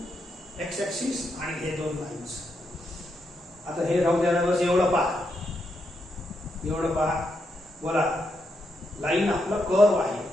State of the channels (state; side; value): normal; both; correlation 0.82